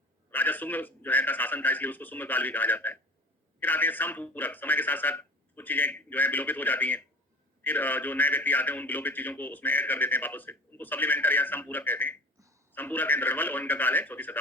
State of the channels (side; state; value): both; normal; correlation 0.40